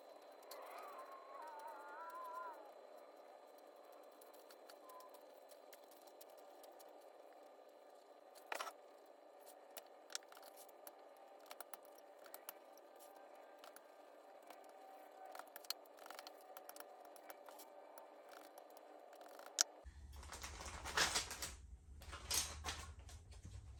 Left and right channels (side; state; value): both; identical; correlation 1.00